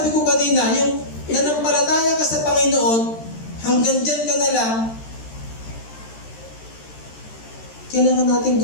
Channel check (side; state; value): right; late; 13 ms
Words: ko kanina, yung nanampalataya ka sa Panginoon, hanggang dyan ka na lang, kailangan natin